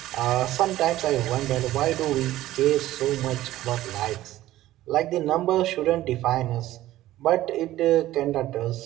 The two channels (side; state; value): left; quieter; 15.0 dB